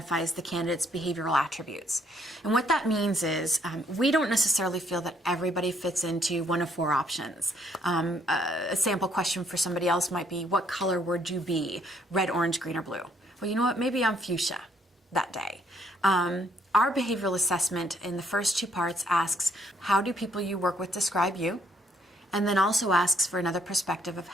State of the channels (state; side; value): normal; both; correlation 0.68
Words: the candidate's behavioral attributes. And what that means is we don't necessarily feel that everybody fits into one of 4 options. A sample question for somebody else might be, what color would you be? Red, orange, green, or blue? Well, you know what? Maybe I'm fuchsia that day. Our behavioral assessment in the first 2 parts asks, how do people you work with describe you? And then also asks for another perspective of